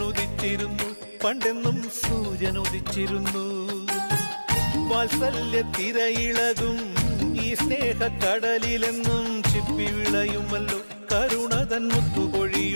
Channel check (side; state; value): both; inverted; correlation -1.00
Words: പണ്ടെന്നും സൂര്യനുദിച്ചിരുന്നു. വാത്സല്യ തിരയിളകും ഈ സ്നേഹക്കടലിലെന്നും ചിപ്പി വിളയുമല്ലോ, കരുണതൻ